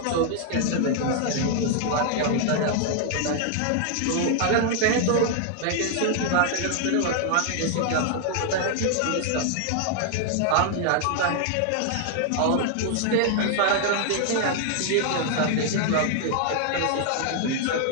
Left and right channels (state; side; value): different; both; correlation 0.00